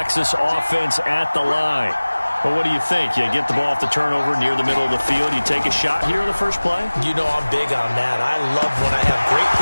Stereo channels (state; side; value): inverted; both; correlation -1.00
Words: offense at the line. Well, what do you think? You get the ball off the turnover near the middle of the field, you take a shot here in the first play? You know I'm big on that. I love when I have great